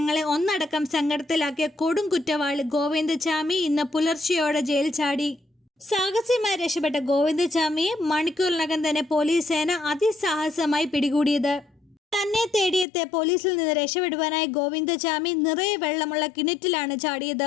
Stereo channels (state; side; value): drops out; right; at 12.9 s